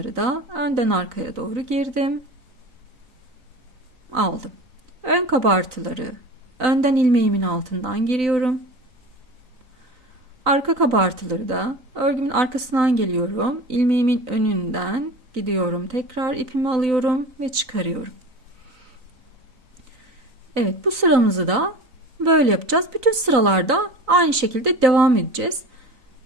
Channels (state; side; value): late; left; 3.9 ms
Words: da önden arkaya doğru girdim, aldım. Ön kabartıları önden ilmeğimin altından giriyorum. Arka kabartıları da örgümün arkasından geliyorum. İlmeğimin önünden gidiyorum. Tekrar ipimi alıyorum ve çıkarıyorum. Evet, bu sıramızı da böyle yapacağız. Bütün sıralarda aynı şekilde devam edeceğiz.